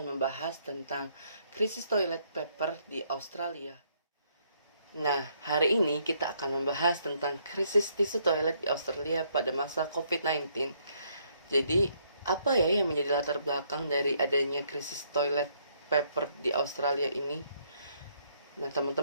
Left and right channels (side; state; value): both; inverted; correlation -0.70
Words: membahas tentang krisis toilet paper di Australia. Nah, hari ini kita akan membahas tentang krisis tisu toilet di Australia pada masa COVID-19. Jadi, apa ya yang menjadi latar belakang dari adanya krisis toilet paper di Australia ini? Nah,